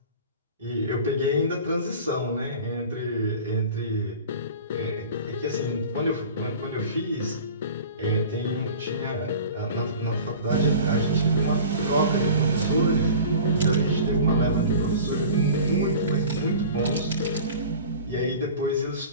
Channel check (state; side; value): inverted; both; correlation -0.39